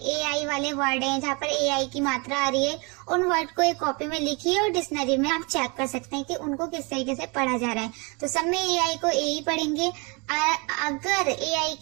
एआई वाले वर्ड हैं, जहाँ पर एआई की मात्रा आ रही है, उन वर्ड को एक कॉपी में लिखिए और डिक्शनरी में आप चेक कर सकते हैं कि उनको किस तरीके से पढ़ा जा रहा है। तो सब में एआई को ए ही पढ़ेंगे। अगर एआई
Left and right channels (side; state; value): left; quieter; 29.9 dB